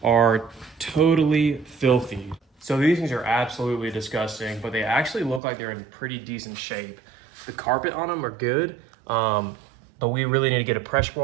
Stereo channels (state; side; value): drops out; left; at 5.4 s